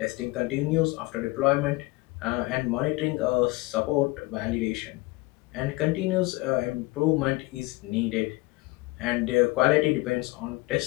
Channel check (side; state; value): right; quieter; 22.4 dB